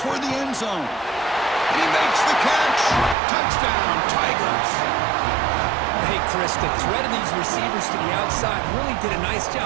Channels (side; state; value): left; drops out; at 3.2 s